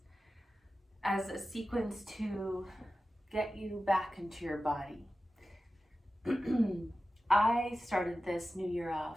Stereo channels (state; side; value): normal; both; correlation 0.94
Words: as a sequence to get you back into your body. I started this new year off